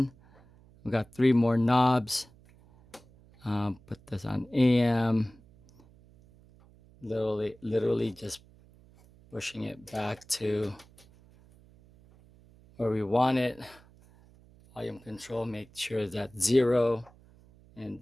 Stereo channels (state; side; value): noise; right; hum, 26 dB below the sound